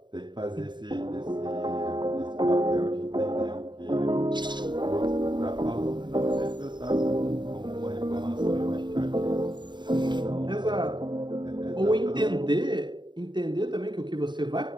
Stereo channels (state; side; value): late; left; 0.22 ms